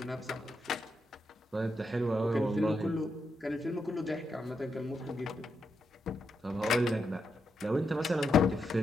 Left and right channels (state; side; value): normal; both; correlation 0.83